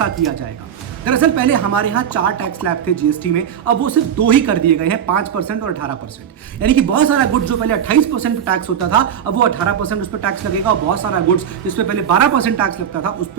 किया जाएगा। दरअसल पहले हमारे यहाँ 4 टैक्स स्लैब थे जीएसटी में, अब वो सिर्फ 2 ही कर दिए गए हैं, 5% और 18%। यानी कि बहुत सारा गुड्स जो पहले 28% टैक्स होता था अब वो 18% उस पर टैक्स लगेगा, और बहुत सारा गुड्स जिसपे पहले 12% टैक्स लगता था उस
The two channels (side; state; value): left; quieter; 8.7 dB